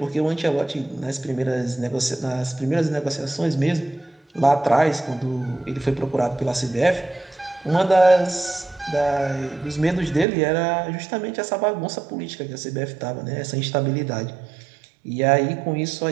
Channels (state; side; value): drops out; left; at 10.2 s